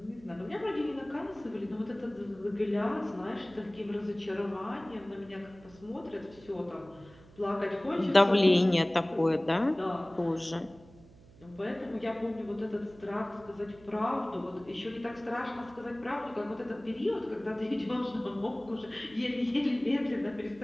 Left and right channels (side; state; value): right; noise; hum, 23 dB below the sound